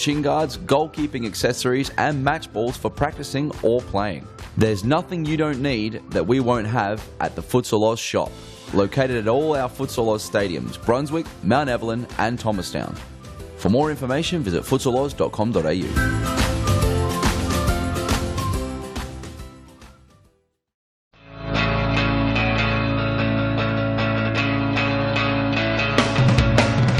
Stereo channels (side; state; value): both; identical; correlation 1.00